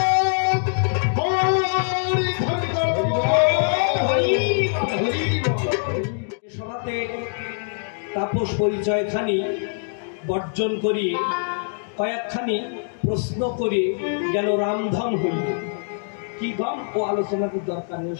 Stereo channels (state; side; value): silent; right; digital silence